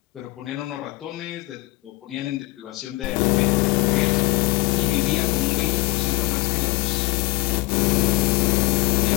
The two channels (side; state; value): right; quieter; 20.7 dB